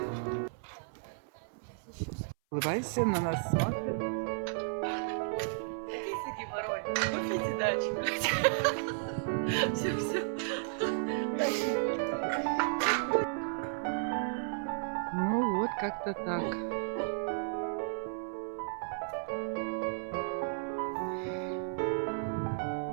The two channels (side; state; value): left; silent; 55 dB below the other